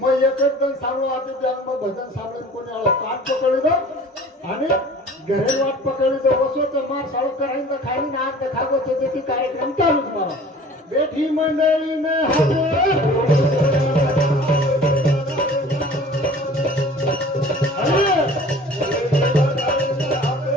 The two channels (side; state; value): both; normal; correlation 0.46